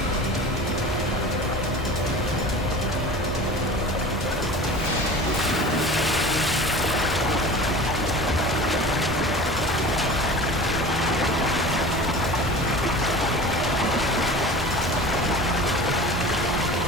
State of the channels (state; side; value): normal; both; correlation 0.37